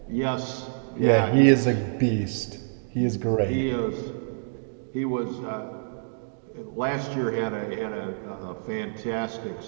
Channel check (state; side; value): silent; left; digital silence